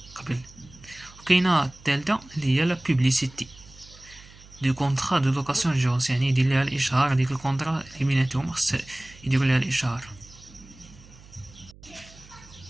قبل. وكاينه الثالثه اللي هي لا بوبليسيتي دو كونطرا دو لوكاسيون جيرونس، يعني يدير لها الاشهار ديك الكونطرا اللي بيناتهم خص يديروا لها الاشهار.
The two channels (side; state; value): right; noise; hum, 22 dB below the sound